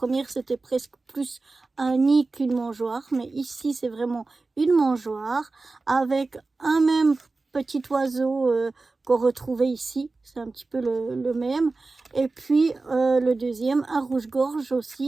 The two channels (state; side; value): quieter; left; 3.6 dB